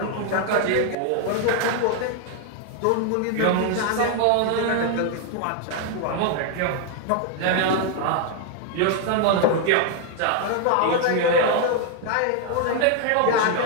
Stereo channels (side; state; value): both; different; correlation 0.00